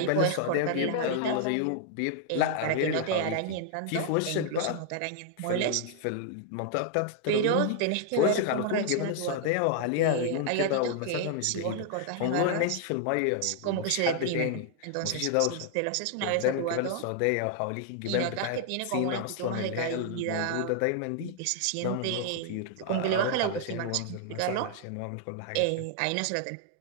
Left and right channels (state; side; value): different; both; correlation 0.00